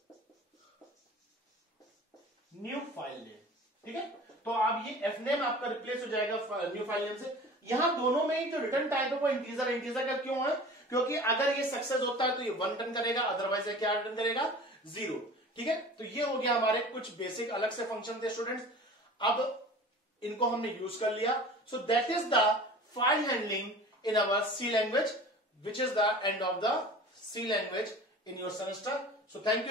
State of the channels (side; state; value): both; normal; correlation 0.41